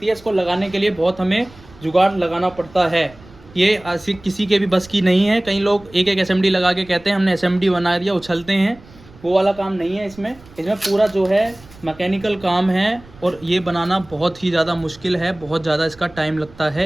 है, इसको लगाने के लिए बहुत हमें जुगाड़ लगाना पड़ता है। ये ऐसी किसी के भी बस की नहीं है। कई लोग एक एक SMD लगा के कहते हैं हमने SMD बना दिया, उछलते हैं। वो वाला काम नहीं है इसमें पूरा जो है मैकेनिकल काम है, और ये बनाना बहुत ही ज़्यादा मुश्किल है। बहुत ज़्यादा इसका टाइम लगता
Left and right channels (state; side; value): noise; right; rumble, 23 dB below the sound